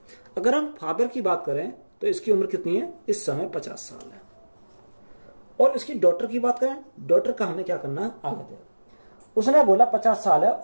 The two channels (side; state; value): both; inverted; correlation -1.00